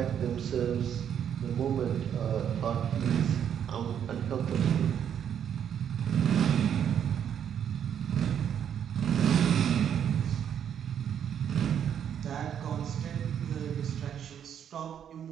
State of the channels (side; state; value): left; quieter; 8.9 dB